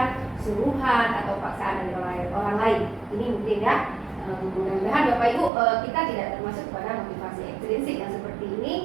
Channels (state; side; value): drops out; left; at 5.5 s